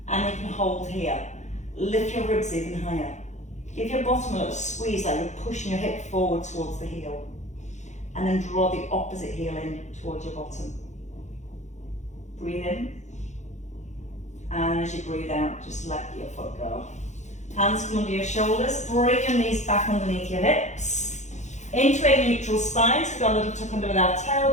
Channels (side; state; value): right; late; 0.34 ms